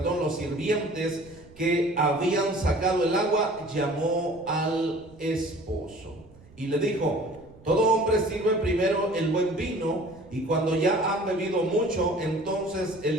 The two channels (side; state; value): right; noise; rumble, 24 dB below the sound